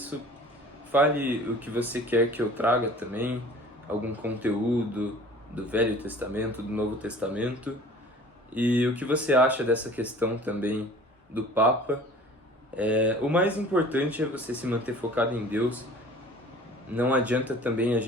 fale o que você quer que eu traga também, algum conteúdo do Velho Testamento, do Novo Testamento, e o que você acha dessa questão também do Papa. O mais importante é você se manter focado em Deus. Não adianta também a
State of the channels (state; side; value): normal; both; correlation 0.46